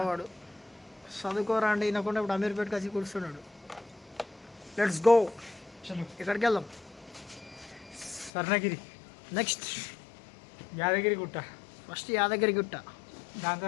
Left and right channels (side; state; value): right; drops out; at 8.3 s